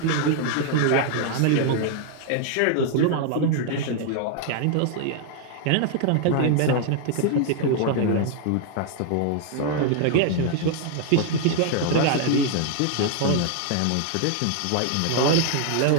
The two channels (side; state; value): both; different; correlation 0.00